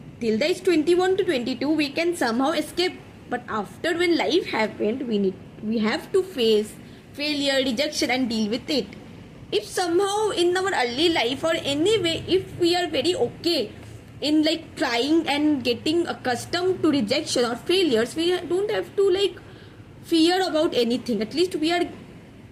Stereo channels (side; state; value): both; identical; correlation 1.00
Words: Till the age 21 to 22 we can somehow escape, but after when life happened, we have to face failure, rejection and deal with it. If somehow in our early life or anyway, if we are very okay in like trying and getting accustomed to rejection or failures, we don't have to like fear about anything. At least we are